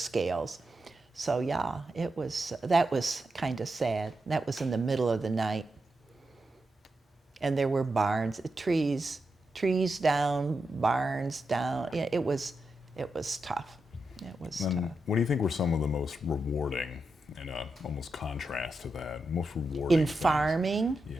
So yeah, that was kind of sad. That was in the middle of the night. And there were barns, trees down, barns down. Yeah, it was tough. It was tough. What do you think were some of the most rewarding, and almost contrast to that, most rewarding In things? farming? Yeah.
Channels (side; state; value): both; normal; correlation 0.87